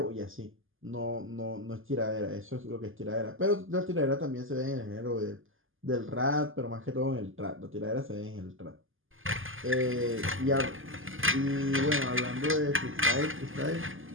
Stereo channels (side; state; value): left; late; 0.59 ms